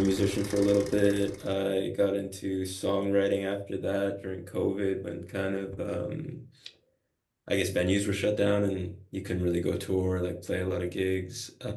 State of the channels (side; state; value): both; identical; correlation 1.00